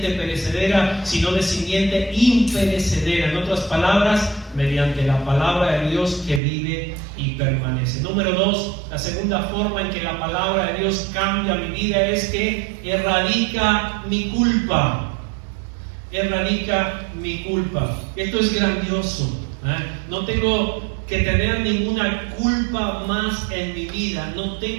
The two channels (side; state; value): left; drops out; at 6.4 s